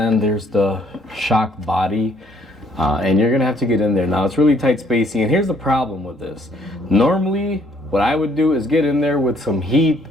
there's the shock body. And you're gonna have to get in there. Now it's really tight spacing, and here's the problem with this. Normally, what I would do is get in there with some heat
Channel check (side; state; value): both; normal; correlation 0.65